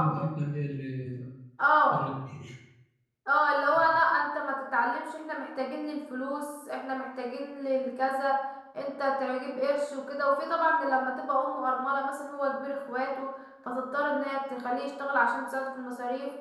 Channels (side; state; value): both; identical; correlation 1.00